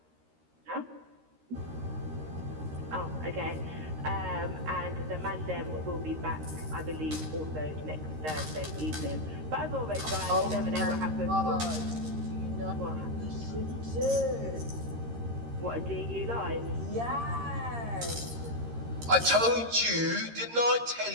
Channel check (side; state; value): left; late; 13 ms